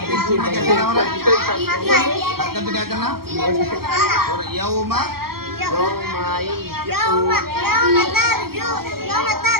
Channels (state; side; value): late; left; 0.94 ms